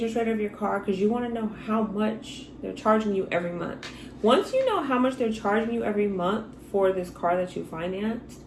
rate of your car because you want to know how much they're charging you every month. Once you know how much they're charging you every month for this car that you financed,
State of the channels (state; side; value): identical; both; correlation 1.00